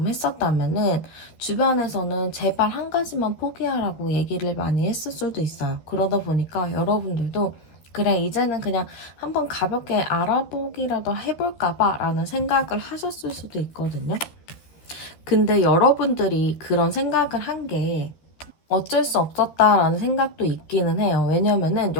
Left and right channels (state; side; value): late; right; 13 ms